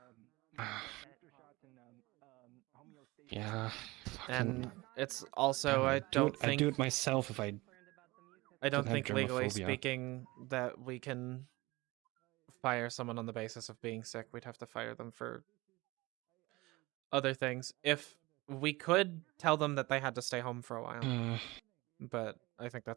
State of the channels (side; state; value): left; quieter; 21.6 dB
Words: Yeah. And it's also, I don't think... I'd do it myself if I don't think legally germophobia. speaking that we can fire someone on the basis of being sick. We'd have to fire them for other things. If we could tell them that they had to stay home for a while. But I think